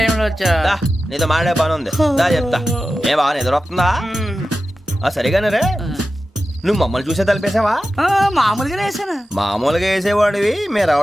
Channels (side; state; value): both; normal; correlation 0.93